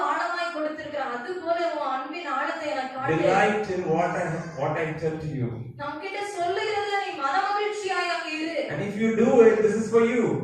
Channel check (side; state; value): both; identical; correlation 1.00